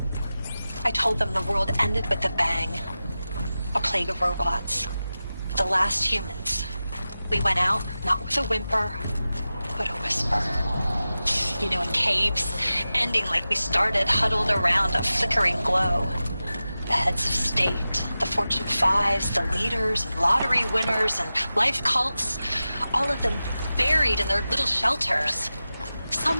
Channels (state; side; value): inverted; both; correlation -0.94